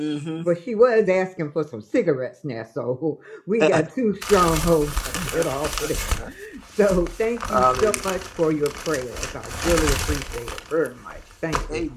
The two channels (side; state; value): both; identical; correlation 1.00